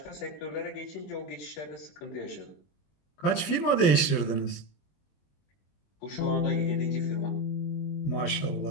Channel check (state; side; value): late; right; 20 ms